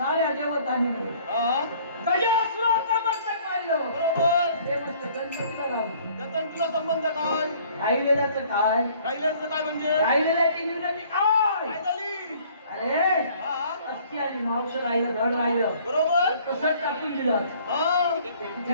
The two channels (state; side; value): inverted; both; correlation -0.56